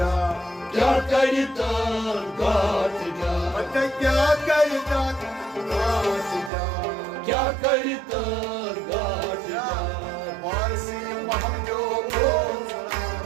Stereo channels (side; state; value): left; drops out; at 6.5 s